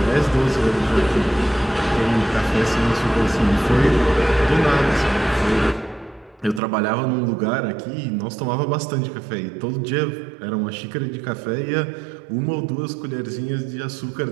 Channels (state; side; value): drops out; left; at 6.6 s